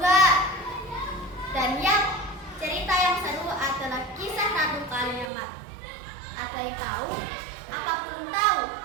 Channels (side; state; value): left; drops out; at 5.3 s